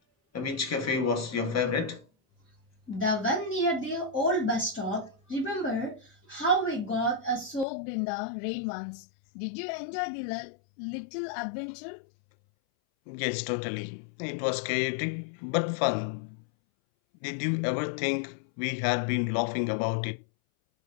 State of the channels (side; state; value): right; drops out; at 7.7 s